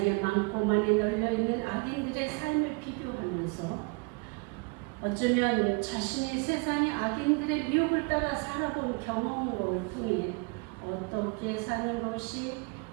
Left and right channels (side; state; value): left; quieter; 32.1 dB